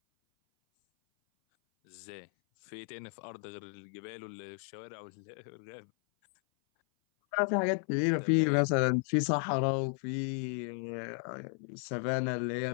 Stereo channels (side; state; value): right; silent; 55 dB below the other